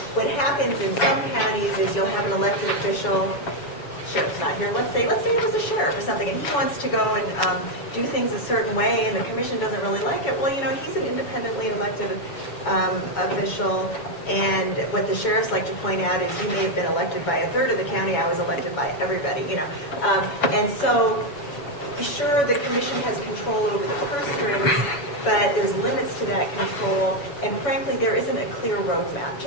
what happens in some counties is you'll have an elected official, sheriff's not here, let's say it was a sheriff or something, and he wants to go and do things a certain way, and the commission doesn't really like it. Well, he's an independently elected official, and what the sheriffs like to point out is you may have been elected by a third of the county, I was elected by everybody, and so sure, the commission has control over the purse strings, but there's limits to that control, and frankly, there isn't a clear roadmap.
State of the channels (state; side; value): late; right; 7.0 ms